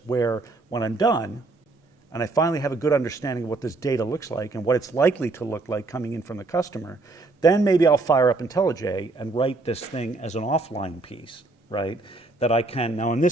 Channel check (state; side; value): quieter; left; 3.4 dB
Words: where when I'm done and I finally have a good understanding of what this data looks like and what it's likely to look like coming in from the customer, then maybe I'll fire up IntelliJ and write this thing as an offline piece, right, that I can, now in